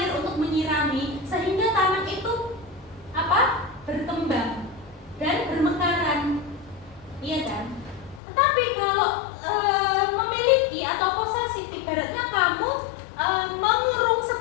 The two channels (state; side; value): drops out; right; at 8.2 s